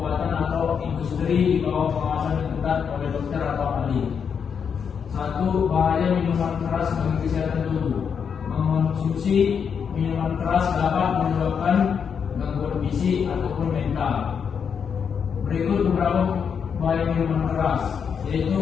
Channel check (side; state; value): right; quieter; 6.9 dB